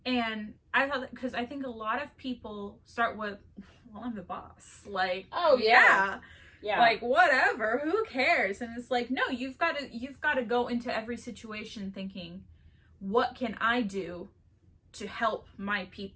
Yeah. And I thought, because I think a lot of people start with, well, I'm the boss. Like, oh yeah. Like, whatever, who cares? And it's like, no, you've got to go into every situation thinking, what can I do to help my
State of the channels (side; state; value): both; identical; correlation 1.00